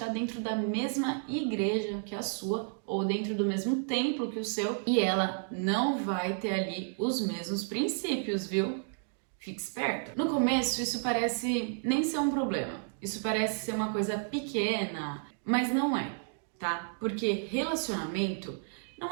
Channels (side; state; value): left; silent; digital silence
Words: dentro da mesma igreja que a sua, ou dentro do mesmo templo que o seu, e ela não vai ter ali os mesmos princípios, viu? Fique esperto. No começo, isso parece nem ser um problema. Isso parece ser uma coisa pequena, mas não é, tá? Porque relacionamento